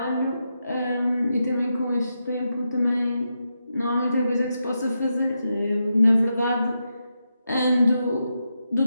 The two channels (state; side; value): inverted; both; correlation -0.86